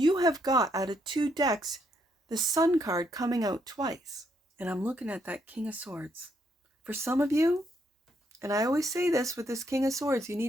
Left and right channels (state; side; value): normal; both; correlation 0.74